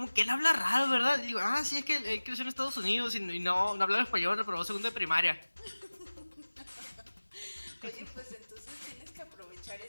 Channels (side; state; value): both; inverted; correlation -1.00